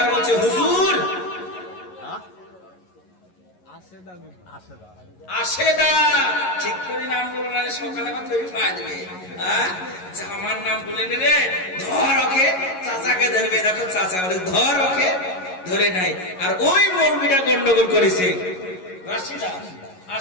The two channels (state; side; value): late; right; 11 ms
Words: বলছে হুজুর আশেদা, ঠিক করে নাম বলো না, সকালে আমার তৈরি পাওয়া যাবে। আমার নাম বলে নিলে ধর ওকে, চাচাকে ধরবে। দেখো চাচা বলে ধর ওকে, ধরে নাই। আর ওই মৌলবীটা গন্ডগোল করেছে